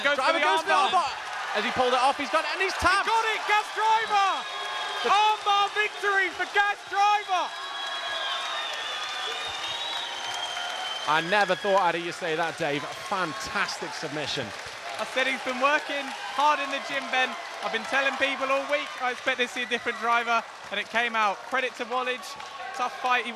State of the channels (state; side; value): identical; both; correlation 1.00